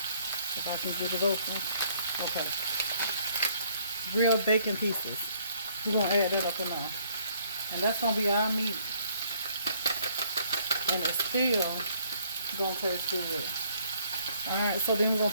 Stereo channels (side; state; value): both; inverted; correlation -0.64